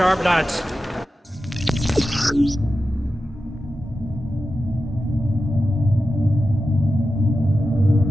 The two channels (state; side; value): normal; both; correlation 0.92